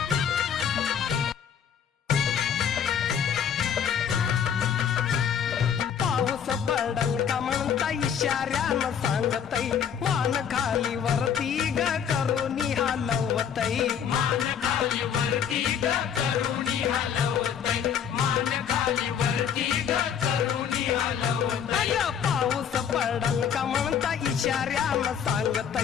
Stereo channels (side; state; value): right; quieter; 8.1 dB